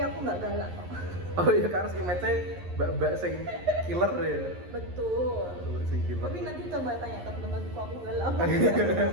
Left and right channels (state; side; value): late; left; 11 ms